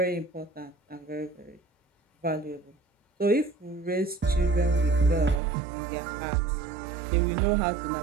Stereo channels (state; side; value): drops out; left; at 5.4 s